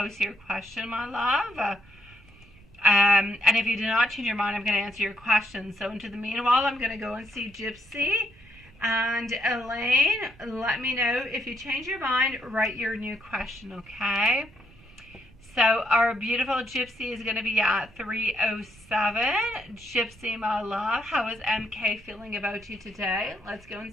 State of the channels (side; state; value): right; noise; rumble, 25 dB below the sound